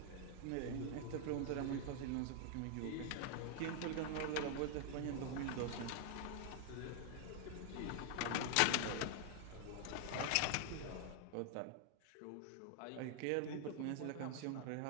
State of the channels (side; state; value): both; different; correlation 0.00